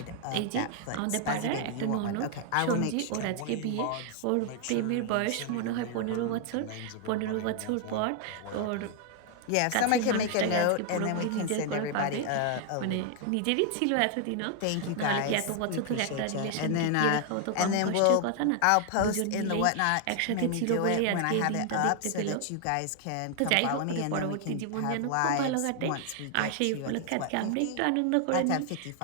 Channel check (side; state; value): both; different; correlation 0.00